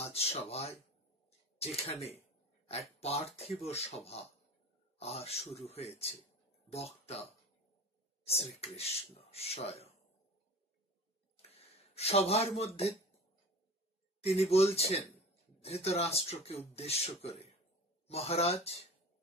যেখানে এক পার্থিব সভা আর শুরু হয়েছে। বক্তা শ্রীকৃষ্ণ স্বয়ং। সভার মধ্যে তিনি বলছেন ধৃতরাষ্ট্রকে উদ্দেশ্য করে, মহারাজ,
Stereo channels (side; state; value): both; normal; correlation 0.36